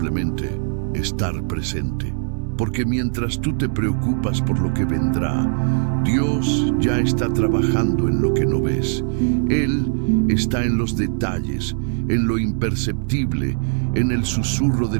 estar presente. Porque mientras tú te preocupas por lo que vendrá, Dios ya está trabajando en lo que no ves. Él está en los detalles, en lo imperceptible, en el susurro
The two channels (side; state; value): left; silent; digital silence